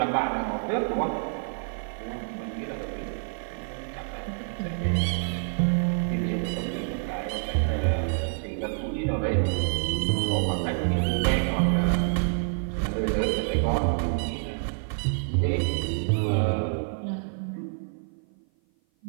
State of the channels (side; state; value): left; silent; 55 dB below the other